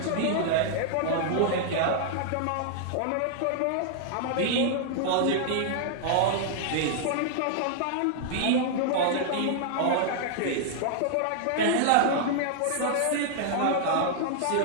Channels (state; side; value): different; both; correlation -0.01